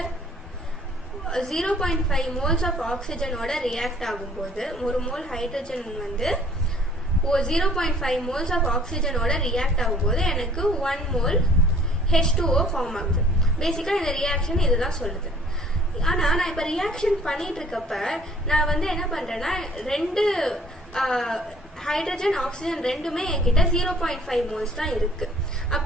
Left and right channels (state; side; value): normal; both; correlation 0.55